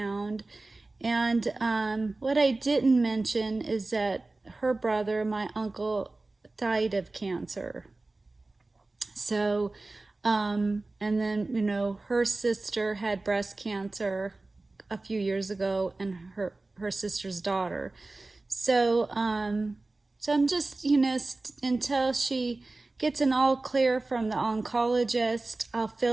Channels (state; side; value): quieter; left; 3.2 dB